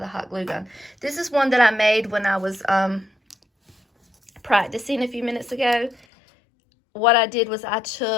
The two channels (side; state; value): right; drops out; at 6.1 s